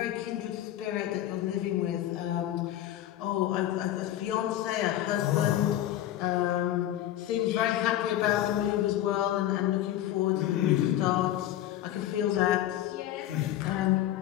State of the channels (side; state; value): right; quieter; 13.0 dB